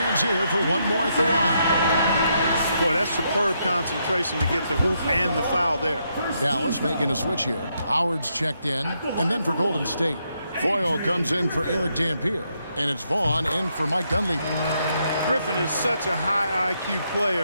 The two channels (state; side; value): inverted; both; correlation -0.78